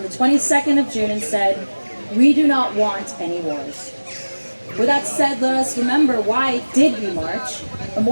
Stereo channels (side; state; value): both; inverted; correlation -1.00